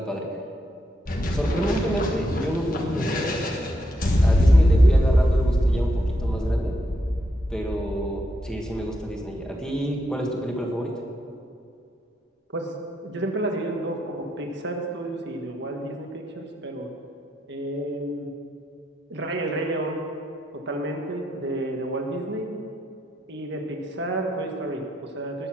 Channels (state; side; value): normal; both; correlation 0.80